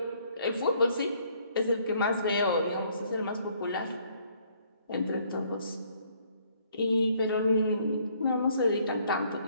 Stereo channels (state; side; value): inverted; both; correlation -0.64